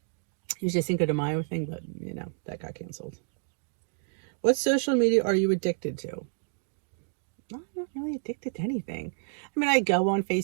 usually Cinco de Mayo thing, but that got canceled. What social media are you addicted to? I'm not really addicted to anything. I mean, I go on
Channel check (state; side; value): silent; left; digital silence